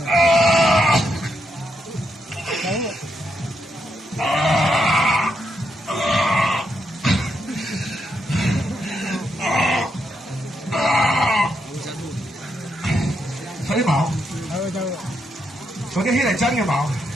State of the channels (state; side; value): normal; both; correlation 0.80